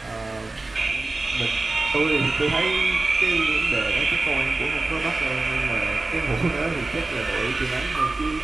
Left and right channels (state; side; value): quieter; left; 3.2 dB